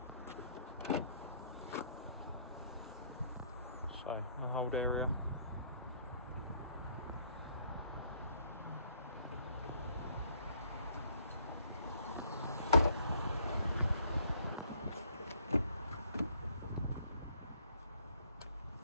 So the hold area.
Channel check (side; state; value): both; inverted; correlation -0.64